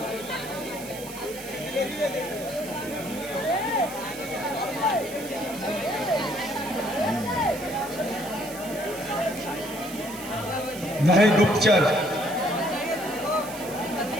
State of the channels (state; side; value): noise; right; hiss, 13 dB below the sound